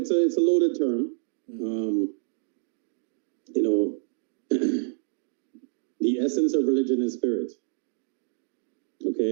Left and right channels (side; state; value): left; silent; digital silence